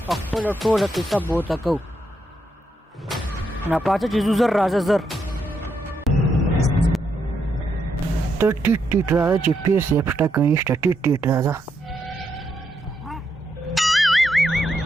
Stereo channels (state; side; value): normal; both; correlation 0.80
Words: او خپله ټوله قصه به ورته کوو ناپاڅه چې ځو زر راځه زر ته ټیټ ټیټ راځه چې پیر صاحب شته که نشته ټیټ ټیټ راځه